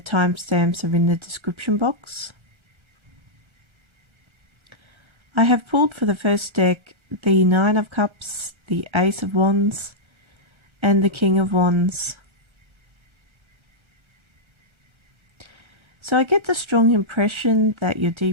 are in the description box. I have pulled for the first deck the 9 of Cups, the Ace of Wands and the King of Wands. So I get the strong impression that you're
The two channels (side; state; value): left; late; 1.3 ms